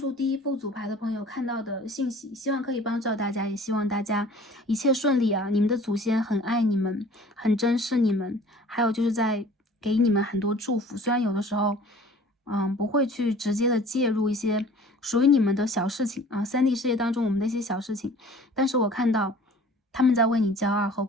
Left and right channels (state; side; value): normal; both; correlation 0.48